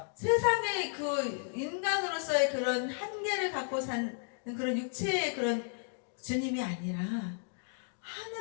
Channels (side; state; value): right; silent; 55 dB below the other